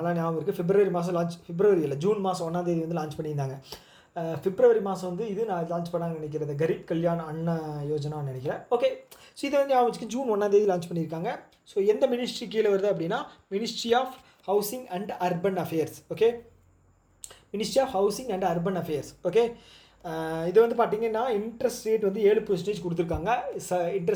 ஞாபகம் இருக்குது. February மாதம் February இல்லை, June மாதம் 1ஆம் தேதி வந்து லான்ச் பண்ணியிருந்தாங்க. February மாதம் வந்து இது நான் லான்ச் பண்ணாங்கன்னு நினைக்கிறது, கரீப் கல்யாண் அண்ணா யோஜனான்னு நினைக்கிறேன். ஓகே. ஸோ இதை வந்து ஞாபகம் வச்சுக்க June 1ஆம் தேதி லான்ச் பண்ணியிருக்காங்க. ஸோ எந்த மினிஸ்ட்ரி கீழே வருது அப்படின்னா ministry of housing and urban affairs. Okay. Ministry of housing and urban affairs. Okay. இது வந்து பார்த்திங்கன்னா இன்ட்ரெஸ்ட் ரேட் வந்து 7% கொடுத்துருக்காங்க.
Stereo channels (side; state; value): both; identical; correlation 1.00